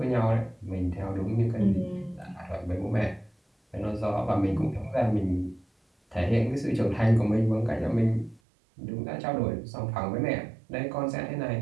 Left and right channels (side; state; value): left; drops out; at 8.4 s